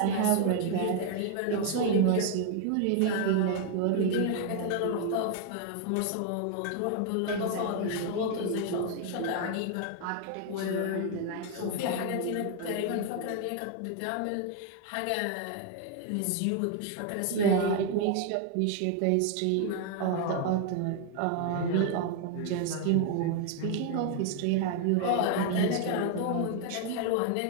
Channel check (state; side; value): different; both; correlation 0.00